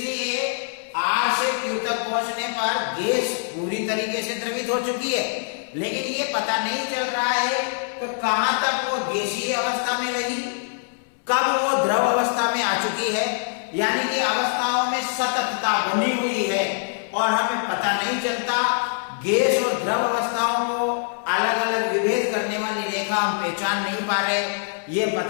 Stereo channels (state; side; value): silent; right; 63 dB below the other